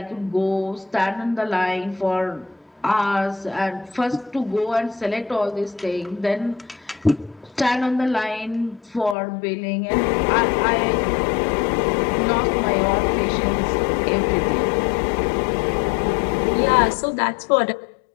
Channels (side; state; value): right; drops out; at 9.2 s